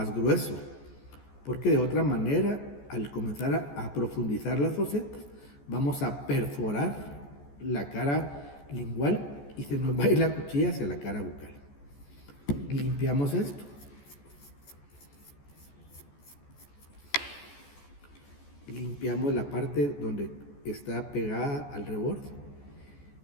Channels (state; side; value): late; right; 14 ms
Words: grueso. Porque de otra manera, al comenzar a profundizar las fosetas, vamos a perforar la cara lingual y se nos va a ir la cuchilla hacia la cara bucal. Limpiamos esto. Limpiamos la parte donde está pegada al reborde.